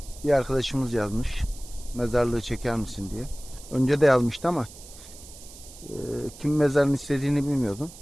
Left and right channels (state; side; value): noise; right; hiss, 18 dB below the sound